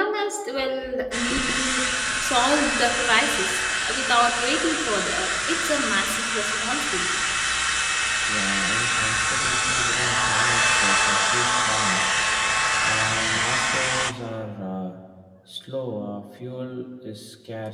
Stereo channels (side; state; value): both; identical; correlation 1.00